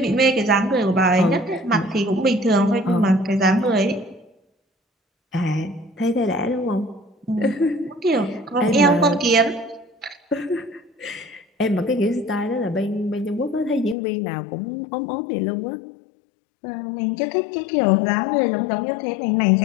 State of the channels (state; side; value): drops out; right; at 14.0 s